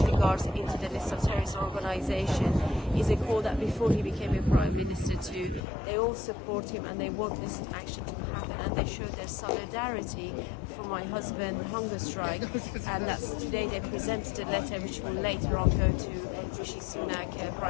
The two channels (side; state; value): right; drops out; at 5.6 s